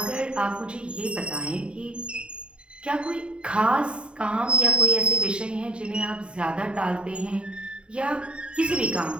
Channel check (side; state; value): left; late; 0.054 ms